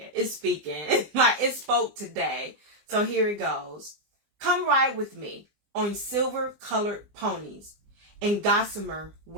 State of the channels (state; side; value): late; left; 20 ms